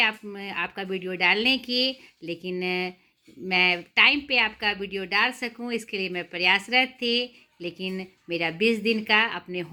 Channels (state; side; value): identical; both; correlation 1.00